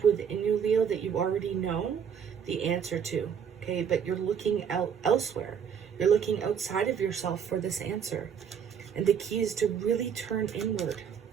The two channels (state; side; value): quieter; left; 7.6 dB